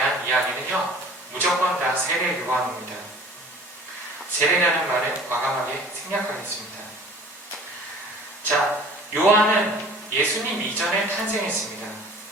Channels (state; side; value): normal; both; correlation 0.47